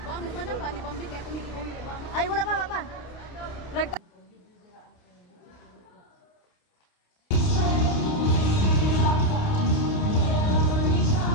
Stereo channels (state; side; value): late; right; 29 ms